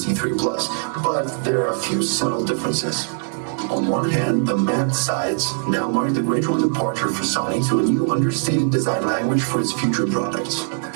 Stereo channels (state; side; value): silent; left; digital silence